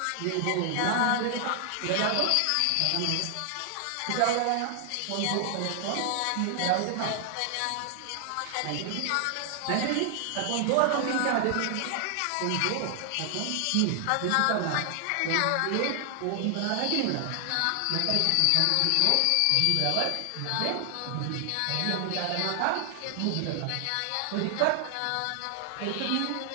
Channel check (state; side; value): different; both; correlation 0.00